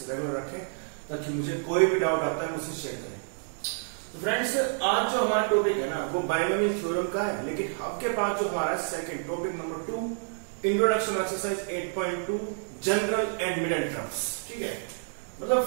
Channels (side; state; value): left; silent; digital silence